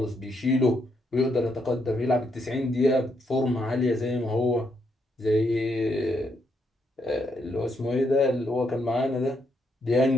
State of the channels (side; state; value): both; normal; correlation 0.77